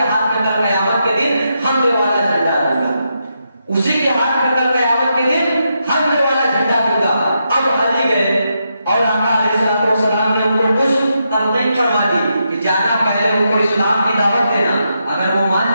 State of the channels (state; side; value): inverted; both; correlation -0.82